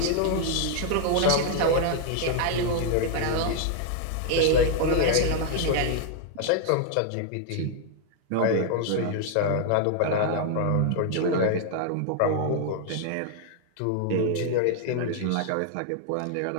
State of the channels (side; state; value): both; different; correlation 0.00